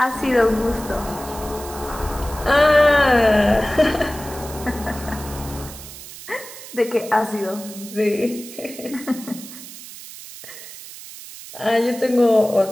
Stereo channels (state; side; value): noise; right; hiss, 14 dB below the sound